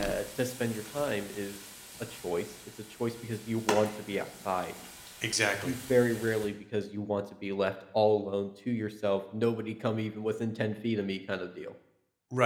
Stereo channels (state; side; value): identical; both; correlation 1.00